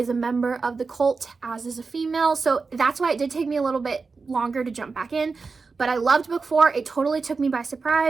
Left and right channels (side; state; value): left; quieter; 4.5 dB